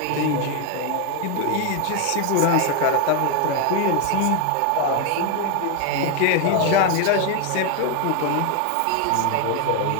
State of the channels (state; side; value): different; both; correlation 0.01